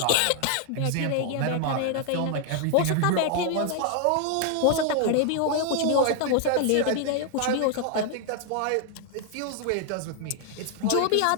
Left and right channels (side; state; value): both; different; correlation 0.00